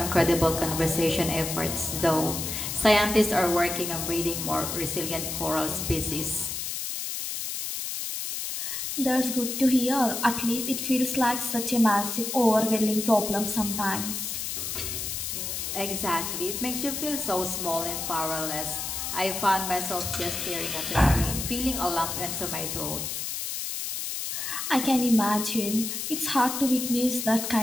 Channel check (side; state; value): left; noise; hiss, 4 dB below the sound